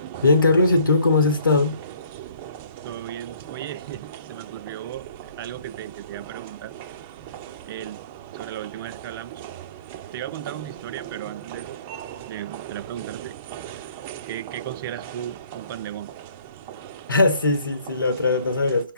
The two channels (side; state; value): both; inverted; correlation -0.58